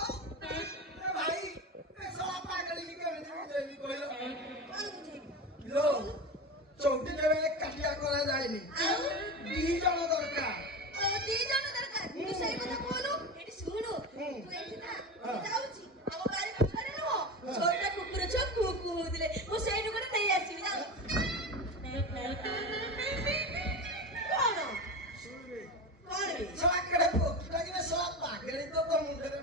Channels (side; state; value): both; normal; correlation 0.24